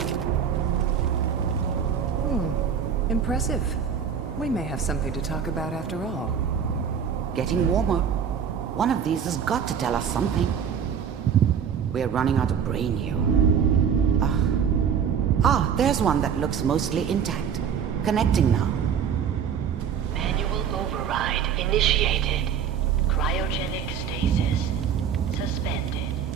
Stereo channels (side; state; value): left; quieter; 7.6 dB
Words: Impressive. We may have something to talk about after all. Getting warmer. One of these has got to tell us something. We're running out of brain here. There's one that looks mostly intact. Connecting now. Manual override initiated. Cryogenic stasis suspended.